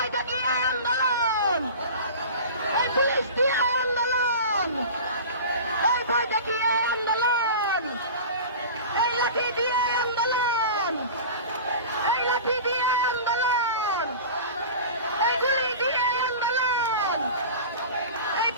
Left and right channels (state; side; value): inverted; both; correlation -0.35